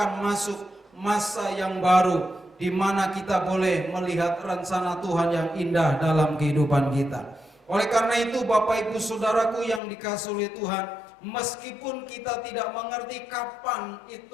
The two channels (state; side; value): drops out; right; at 9.8 s